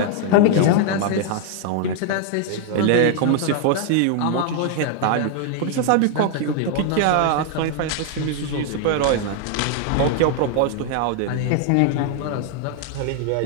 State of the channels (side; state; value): both; different; correlation 0.00